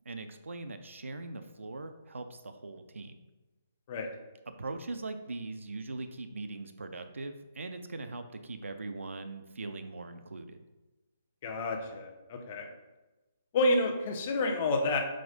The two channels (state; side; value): inverted; both; correlation -0.62